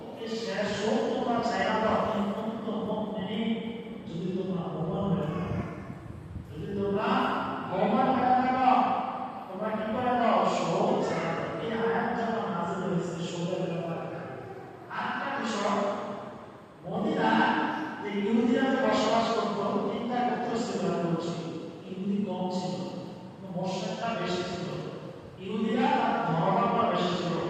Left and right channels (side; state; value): both; identical; correlation 1.00